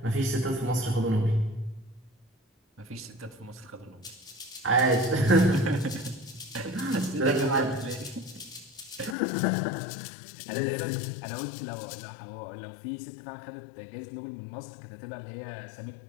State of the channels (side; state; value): right; drops out; at 9.2 s